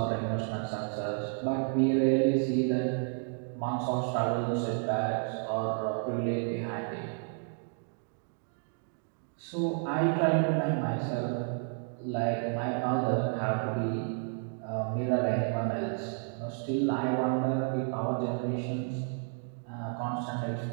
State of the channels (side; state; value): left; silent; 57 dB below the other